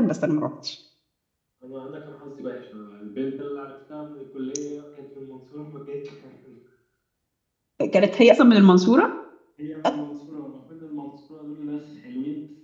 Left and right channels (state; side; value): identical; both; correlation 1.00